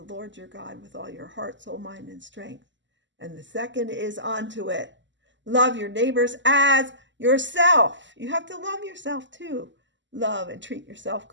Lord your God with all your heart, soul, mind, and strength. And the second is onto it. Love your neighbors as yourself. You have to love yourself too. Love and treat yourself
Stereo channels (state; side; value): late; left; 0.54 ms